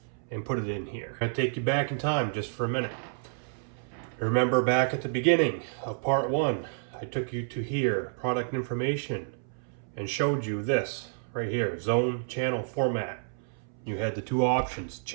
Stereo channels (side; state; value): left; silent; 58 dB below the other